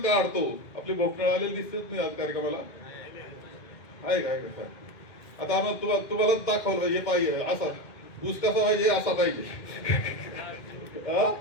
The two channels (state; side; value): late; right; 2.1 ms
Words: काढतो, आपली भोकनाळ आलेली दिसतेच नाही आज कार्यक्रमाला आहे काय का. आता आम्हाला तुम्हाला दाखवलं पाहिजे पाहिजे असा ऊस कसा पाहिजे असा पाहिजे